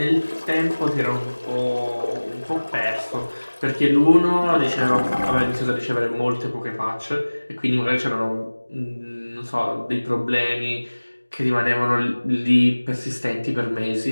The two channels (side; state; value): both; inverted; correlation -1.00